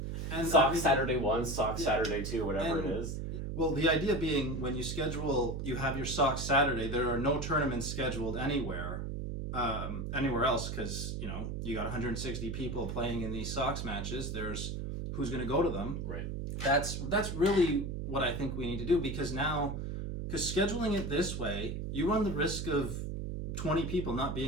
And SOCS Saturday 1, SOCS Saturday 2, whatever it is. Well, the idea being, when you have your SOCS Saturday, there are no tournaments scheduled anywhere else, because you got 160 people playing in these SOCS matches. There's who's going to go to them. Right. That's really what I think we need to do, because scheduling it this way, you run the risk of 20 people not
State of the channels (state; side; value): noise; right; hum, 4 dB below the sound